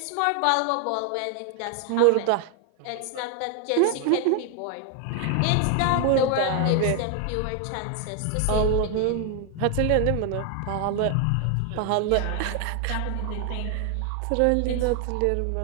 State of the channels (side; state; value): both; different; correlation 0.00